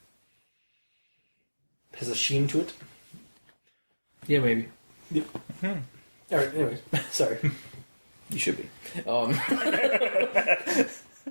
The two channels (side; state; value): both; inverted; correlation -1.00